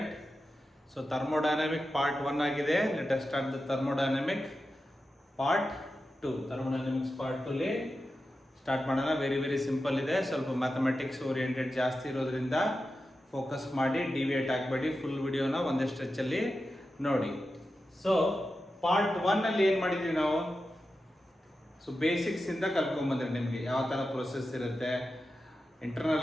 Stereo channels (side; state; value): both; normal; correlation 0.91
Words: So thermodynamic part 1 ಆಗಿದೆ. Let us start the thermodynamic part 2. Thermodynamics part 2 ಲಿ ಸ್ಟಾರ್ಟ್ ಮಾಡೋಣ. Very simple ಇದೆ. ಸ್ವಲ್ಪ mathematics oriented ಜಾಸ್ತಿ ಇರೋದ್ರಿಂದ ಫೋಕಸ್ ಮಾಡಿ ಡಿವಿಯೇಟ್ ಆಗಬೇಡಿ. ಫುಲ್ ವಿಡಿಯೋನ ಒಂದೇ ಸ್ಟ್ರೆಚಲ್ಲಿ ನೋಡಿ. ಸೊ ಪಾರ್ಟ್ 1 ಅಲ್ಲಿ ಏನು ಮಾಡಿದ್ವಿ ನಾವು? ಸೊ ಬೇಸಿಕ್ಸ್ ಇಂದ ಕಲ್ತ್ಕೊಂಡ್ಬಂದ್ರೆ ನಿಮಗೆ ಯಾವ ಥರ ಪ್ರೊಸೆಸ್ ಇರುತ್ತೆ,